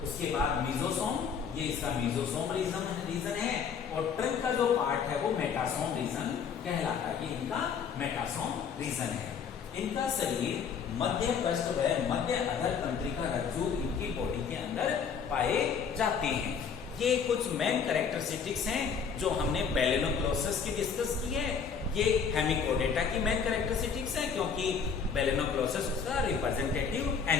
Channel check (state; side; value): quieter; right; 6.5 dB